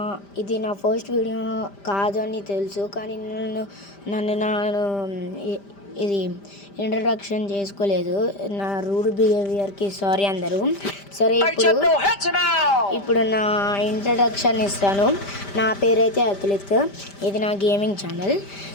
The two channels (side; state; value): right; late; 5.0 ms